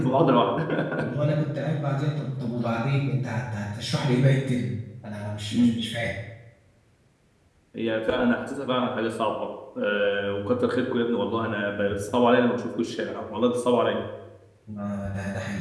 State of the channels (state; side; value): identical; both; correlation 1.00